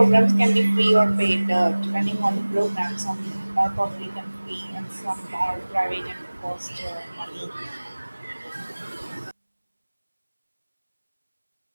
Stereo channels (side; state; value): both; inverted; correlation -1.00